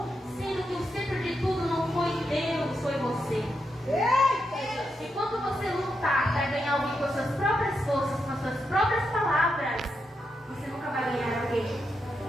sendo que o centro de tudo não foi Deus, foi você. E quando você lutar para ganhar alguém com as suas próprias forças, com as suas próprias palavras, você nunca vai ganhar alguém.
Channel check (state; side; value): normal; both; correlation 0.84